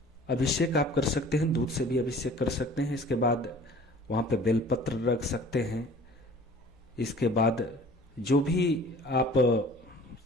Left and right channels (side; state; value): both; normal; correlation 0.47